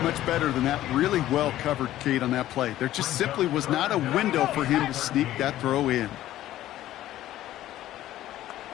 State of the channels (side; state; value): right; quieter; 13.9 dB